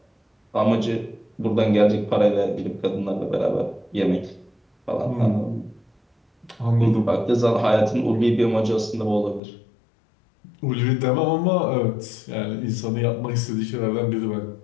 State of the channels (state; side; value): drops out; right; at 9.4 s